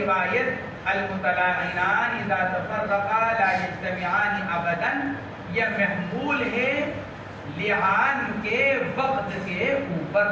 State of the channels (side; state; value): both; identical; correlation 1.00